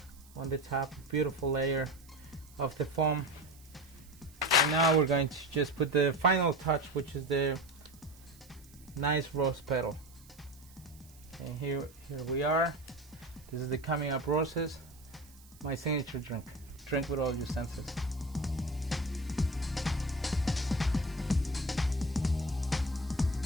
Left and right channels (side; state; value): right; noise; hiss, 24 dB below the sound